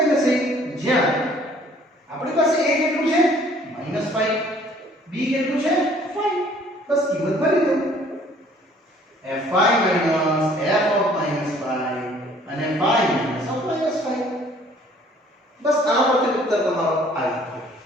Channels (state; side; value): normal; both; correlation 0.57